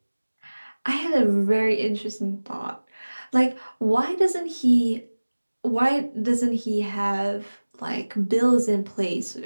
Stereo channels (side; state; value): both; inverted; correlation -1.00